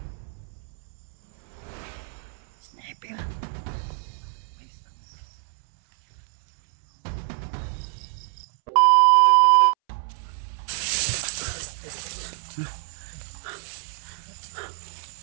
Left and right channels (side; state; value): left; silent; 61 dB below the other